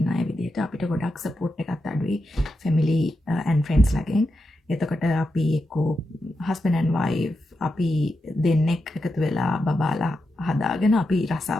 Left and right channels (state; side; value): normal; both; correlation 0.87